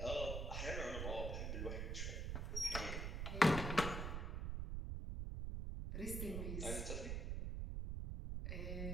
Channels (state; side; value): noise; right; rumble, 1 dB below the sound